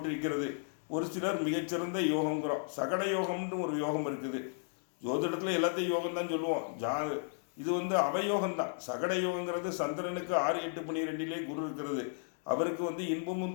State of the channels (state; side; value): silent; right; digital silence